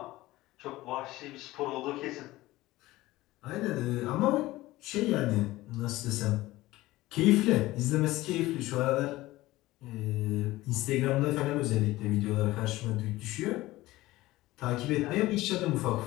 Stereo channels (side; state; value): right; quieter; 17.9 dB